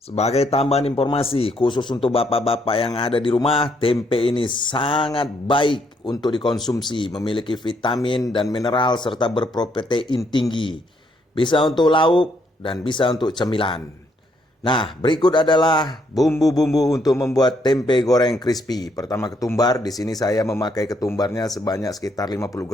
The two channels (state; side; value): normal; both; correlation 0.72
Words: Sebagai tambahan informasi khusus untuk bapak-bapak yang ada di rumah, tempe ini sangat baik untuk dikonsumsi, memiliki vitamin dan mineral serta berprotein tinggi. Bisa untuk lauk dan bisa untuk cemilan. Nah, berikut adalah bumbu-bumbu untuk membuat tempe goreng crispy. Pertama, ketumbar. Di sini saya memakai ketumbarnya sebanyak sekitar 50